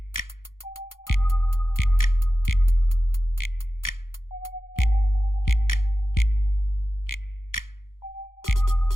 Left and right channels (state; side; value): late; right; 0.90 ms